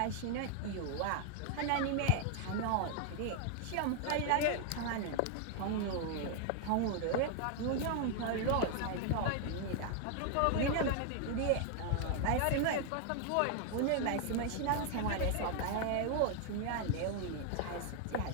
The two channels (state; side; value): different; both; correlation 0.00